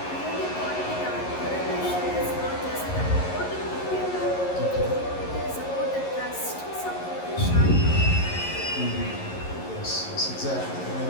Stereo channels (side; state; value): right; late; 11 ms